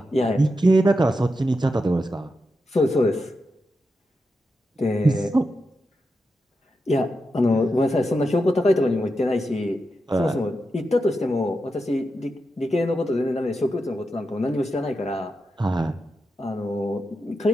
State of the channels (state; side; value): normal; both; correlation 0.88